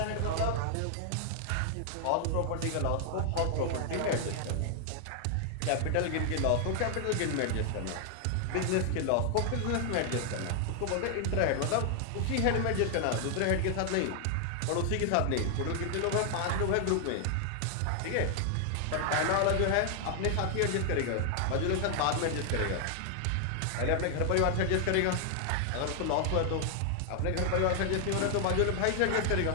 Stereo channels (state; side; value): different; both; correlation 0.00